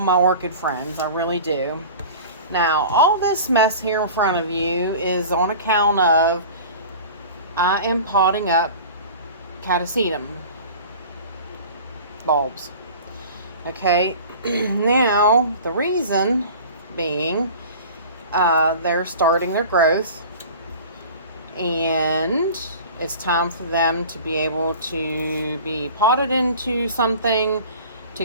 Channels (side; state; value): both; inverted; correlation -0.40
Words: my orchid friends. I really do. Now, all this mess here in front of you is on account of I am potting up catasetum bulbs. Okay, now the reason being they're starting their growth and it's time for them to be able to be potted into something to